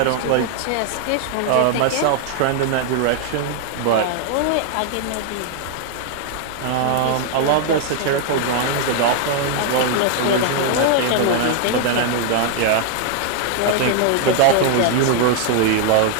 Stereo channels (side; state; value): both; different; correlation 0.00